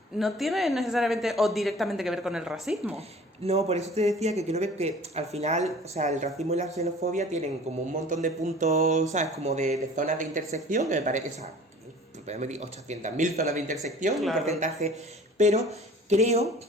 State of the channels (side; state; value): both; normal; correlation 0.46